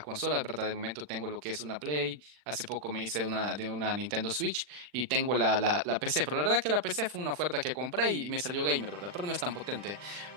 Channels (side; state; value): left; late; 40 ms